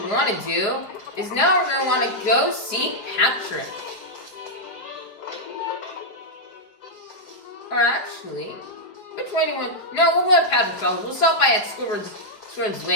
want to do is now we're gonna want to go see Patrick. Or actually, which way do you want? No, we'll go to Patrick's house. We'll stop by at Squidward's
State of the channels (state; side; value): late; right; 5.2 ms